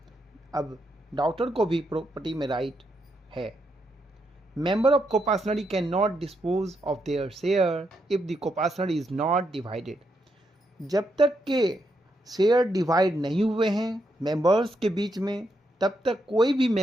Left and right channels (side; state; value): both; normal; correlation 0.80